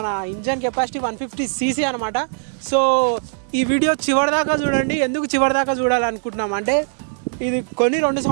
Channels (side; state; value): left; silent; 64 dB below the other